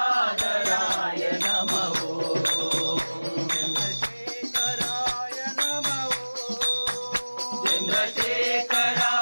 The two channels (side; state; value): both; inverted; correlation -1.00